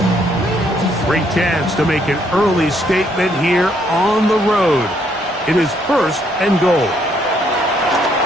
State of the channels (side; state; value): both; normal; correlation 0.70